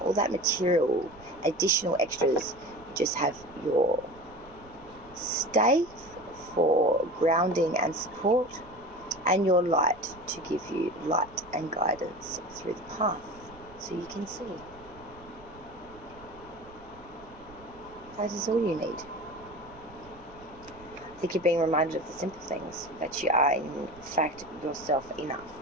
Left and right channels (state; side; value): noise; right; rumble, 22 dB below the sound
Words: all that material, additional extras. You just have your stave for grounding and support, and your light to give you light and guidance through the path so you can see. That is all you need. I think you're being reminded of the simple things, that you are in fact yourself enough.